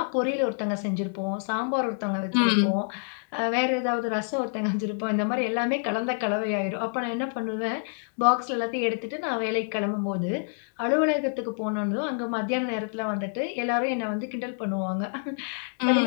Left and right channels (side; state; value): right; silent; 60 dB below the other